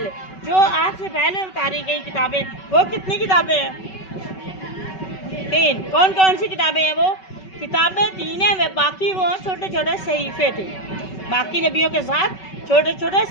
जो आपसे पहले उतारी गई किताबें, वो कितनी किताबें हैं? 3। कौन कौन सी किताबें हैं? वो किताबें 3 हैं, वे बाकी वो छोटे छोटे सहीफे थे। बाकी नबियों के साथ छोटे छोटे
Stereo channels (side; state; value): right; late; 5.3 ms